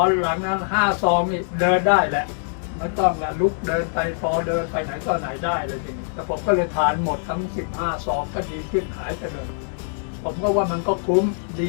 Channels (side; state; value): right; silent; 63 dB below the other